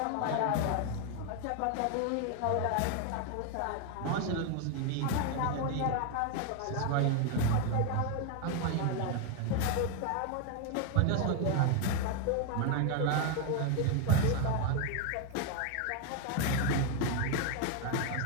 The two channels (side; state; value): both; different; correlation 0.01